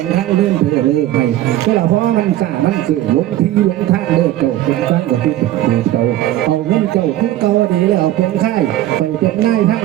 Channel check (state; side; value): quieter; left; 13.8 dB